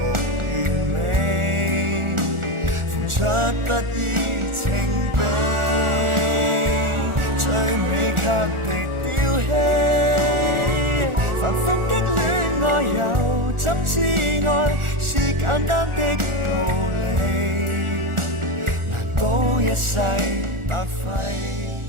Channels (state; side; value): late; left; 1.4 ms